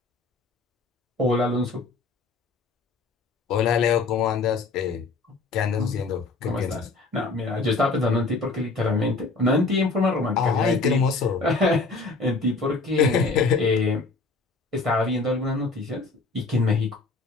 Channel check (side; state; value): right; quieter; 3.7 dB